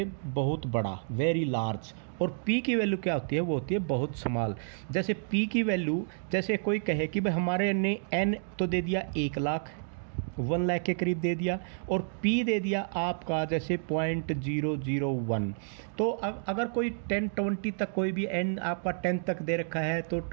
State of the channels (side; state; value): left; silent; digital silence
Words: बहुत बड़ा, वेरी लार्ज, और p की वैल्यू क्या होती है, वो होती है बहुत स्मॉल। जैसे p की वैल्यू, जैसे कोई कहे कि भाई हमारे ने n तो दे दिया 1 लाख, 1 लाख के करीब दे दिया, और p दे दिया आपका जैसे 0.001। तो अगर कोई 10 20 तक कोई भी n आपका 10 तक दे रखा है तो